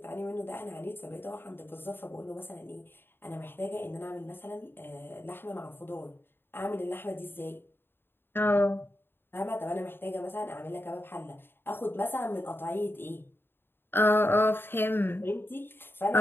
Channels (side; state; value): right; late; 0.10 ms